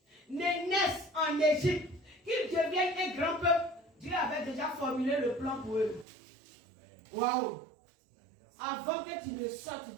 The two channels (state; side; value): drops out; left; at 6.1 s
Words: ne naissent en Égypte, qu'ils deviennent un grand peuple, Dieu avait déjà formulé le plan pour eux. Waouh! Avant que tu ne sortes